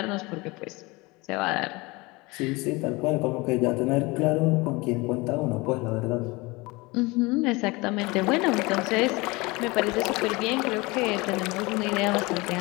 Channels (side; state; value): right; quieter; 24.1 dB